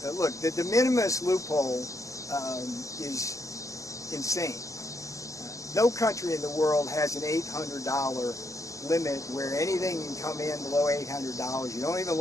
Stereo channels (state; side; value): late; right; 0.15 ms